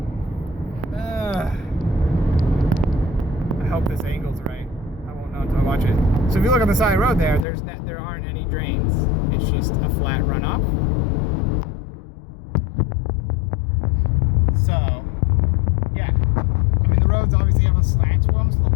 I hope this angle's right. I won't know until I watch it. So if you look on the side of the road there aren't any drains. It's just a flat runoff. So, yeah. I mean, the roads obviously have a slant to them, so the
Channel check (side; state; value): right; drops out; at 7.5 s